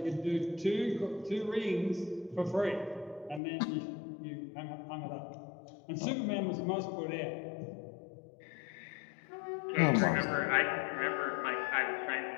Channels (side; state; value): right; drops out; at 3.4 s